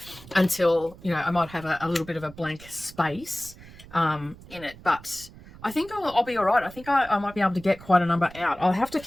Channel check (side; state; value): right; noise; rumble, 19 dB below the sound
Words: until, you know, I might have a little bit of a blank space in it. But I think I'll be all right. I think I might be able to get quite a number out. I'll have to